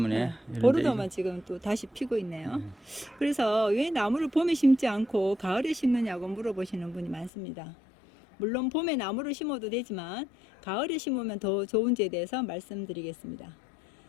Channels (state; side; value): drops out; right; at 7.3 s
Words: 네, 이런데 보르도만 지금 또 다시 피고 있네요. 그래서 왜 나무를 봄에 심지 않고 가을에 심느냐고 물어보시는 분이 많습니다. 물론 봄에 나무를 심어도 되지만 가을에 심으면 더 좋은지에 대해서 말씀드리겠습니다.